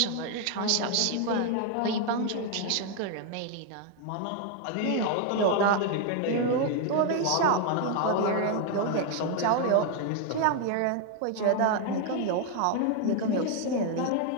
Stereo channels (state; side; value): different; both; correlation 0.00